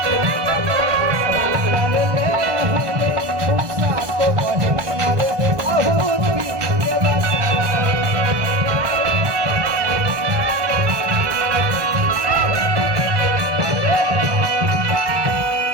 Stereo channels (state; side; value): late; left; 1.5 ms